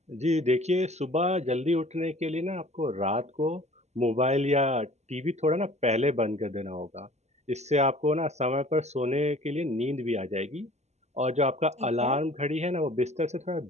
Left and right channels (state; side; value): late; left; 0.32 ms